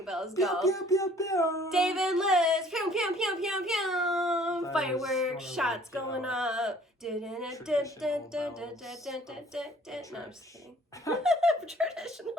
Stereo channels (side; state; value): both; normal; correlation 0.56